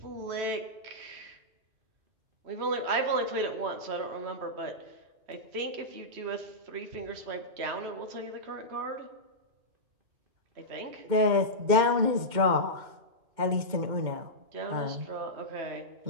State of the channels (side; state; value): left; late; 2.2 ms